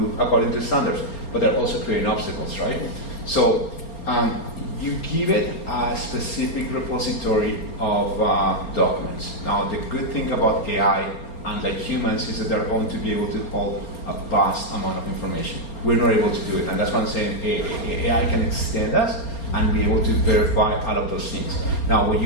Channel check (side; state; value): right; late; 4.3 ms